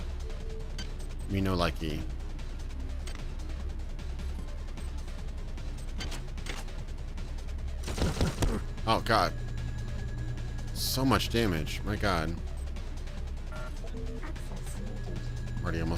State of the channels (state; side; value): identical; both; correlation 1.00